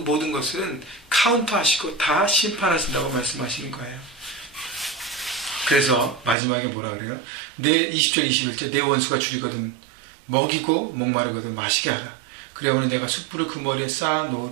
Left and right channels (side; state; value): left; drops out; at 6.4 s